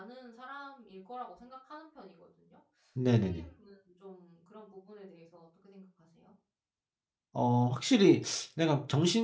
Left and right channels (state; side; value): identical; both; correlation 1.00